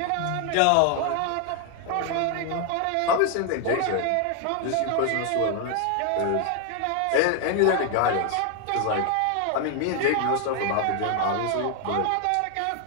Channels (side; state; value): both; different; correlation 0.00